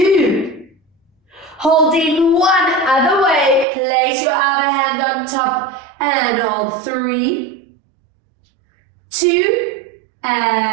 Holding 1 other way, place your other hand on top and hold 3, 2,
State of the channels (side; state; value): left; drops out; at 3.7 s